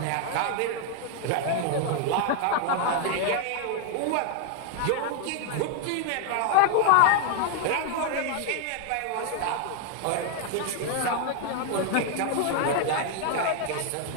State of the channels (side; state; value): both; different; correlation 0.00